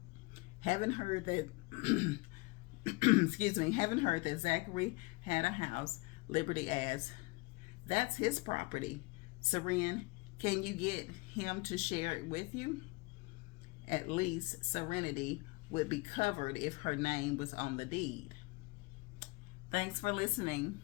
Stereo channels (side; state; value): right; quieter; 26.0 dB